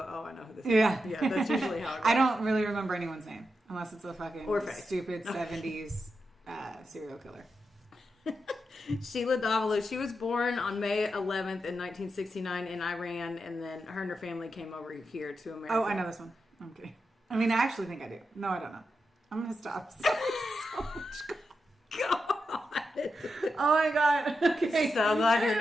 oh, I know who this is. Yeah. Yeah, that's usually how it goes. I don't really remember anyone's name unless it's a fucking Or face. stupid 70s serial killer. Sheila Davalloo. She was born on May 11th in 1969 in Iran, and then her and her family came over here to America. Oh, I know this one. I'm kidding. I mean, I actually think I do. No, I don't know. I'm going to stop. So much. God. Oh my God. Okay. So glad you're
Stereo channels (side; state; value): both; normal; correlation 0.87